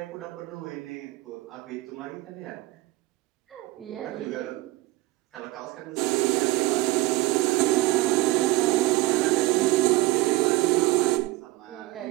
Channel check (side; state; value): left; quieter; 19.6 dB